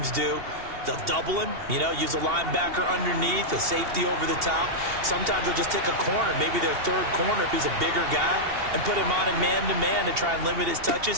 do, they'll double him, you know, use a linebacker underneath, a safety over the top. Sometimes they'll just take a corner, maybe their 3rd corner if he's a bigger guy, and put him on a man-to-man to try and limit his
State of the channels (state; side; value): late; left; 2.8 ms